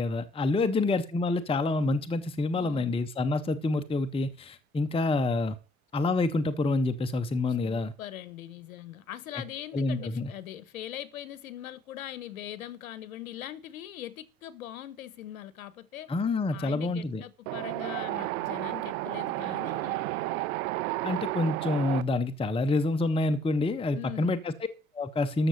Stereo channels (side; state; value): both; normal; correlation 0.63